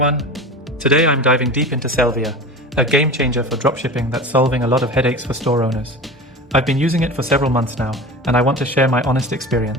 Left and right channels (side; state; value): both; normal; correlation 0.32